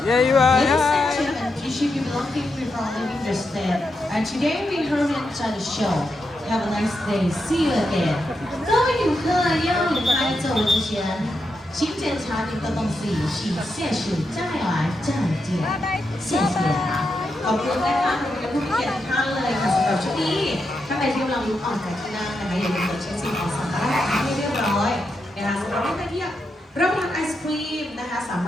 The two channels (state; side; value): normal; both; correlation 0.85